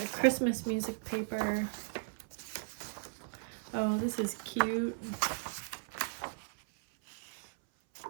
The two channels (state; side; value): silent; left; 53 dB below the other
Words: Christmas music paper. Oh, this is cute.